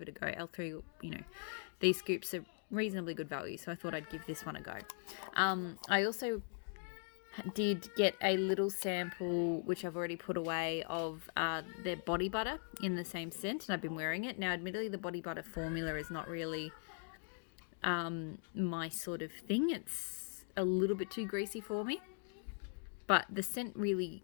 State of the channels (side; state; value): right; silent; 51 dB below the other